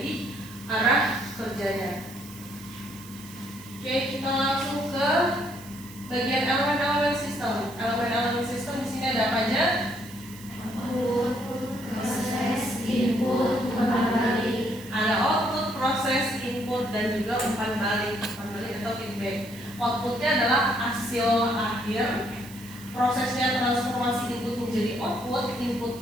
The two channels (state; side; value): noise; right; hiss, 19 dB below the sound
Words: arah kerjanya. Oke, kita langsung ke bagian elemen-elemen sistem. Elemen-elemen sistem di sini ada apa aja? Output, proses, input, umpan balik. Ada output, proses, input, dan juga umpan balik. Umpan balik atau feedback. Outputnya adalah hasil akhir. Prosesnya transformasi input menjadi output.